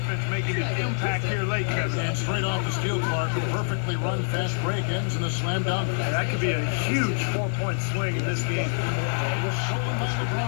making an impact here late, Kevin. And straight off the steal, Clark. A perfectly run fast break ends in a slam dunk. That could be a huge 4-point swing in this game. It was stolen by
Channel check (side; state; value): right; silent; 61 dB below the other